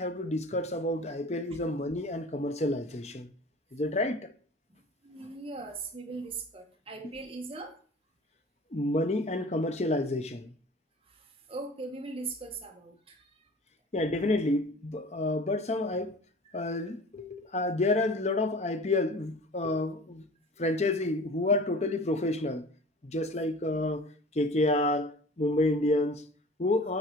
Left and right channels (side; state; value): both; normal; correlation 0.42